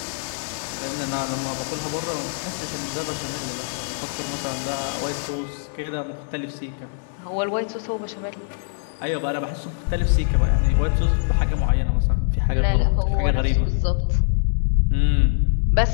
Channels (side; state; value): right; silent; digital silence